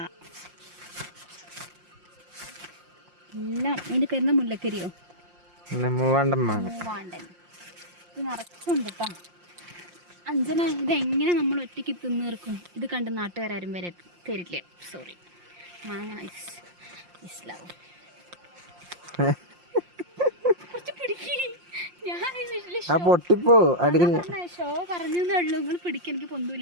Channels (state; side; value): late; left; 5.7 ms